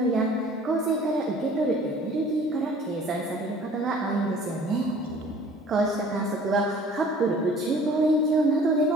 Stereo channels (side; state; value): both; normal; correlation 0.50